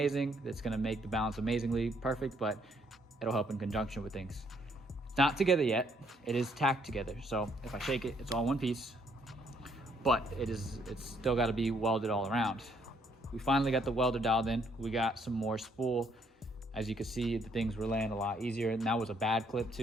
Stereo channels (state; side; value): normal; both; correlation 0.68